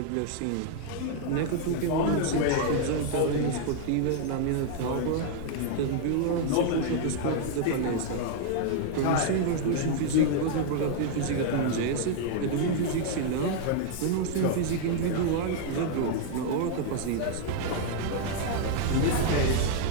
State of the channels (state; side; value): different; both; correlation -0.01